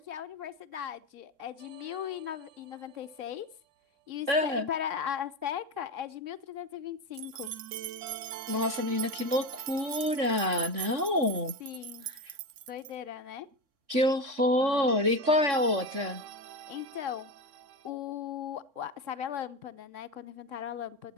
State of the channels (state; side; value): late; left; 3.6 ms